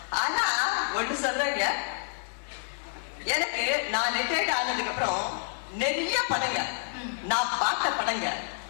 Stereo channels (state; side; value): silent; right; 59 dB below the other